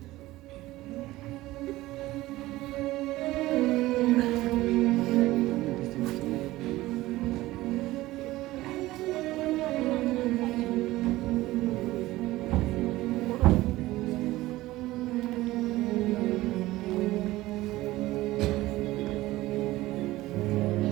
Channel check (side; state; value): left; quieter; 17.6 dB